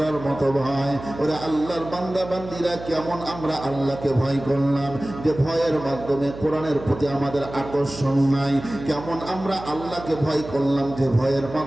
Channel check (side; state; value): right; noise; hum, 12 dB below the sound